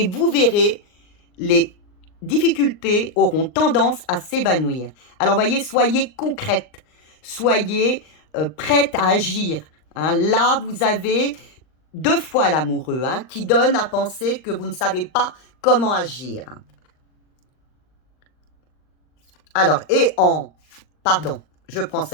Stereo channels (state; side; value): late; right; 39 ms